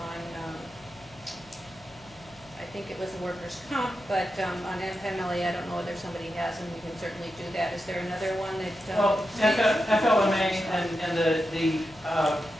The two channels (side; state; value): left; noise; hum, 25 dB below the sound